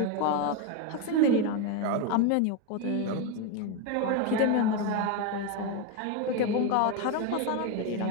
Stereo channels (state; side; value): different; both; correlation 0.02